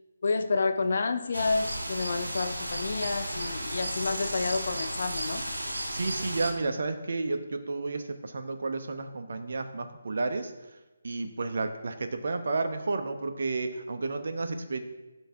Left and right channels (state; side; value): inverted; both; correlation -0.89